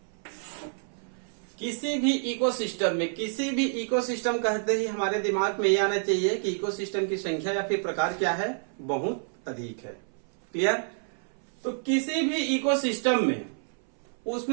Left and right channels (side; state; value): left; silent; 59 dB below the other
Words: किसी भी इकोसिस्टम कहते ही हमारे दिमाग में ये आना चाहिए कि इकोसिस्टम की संख्या या फिर प्रकार क्या है, बहुत अधिक है, क्लियर। तो किसी भी इकोसिस्टम में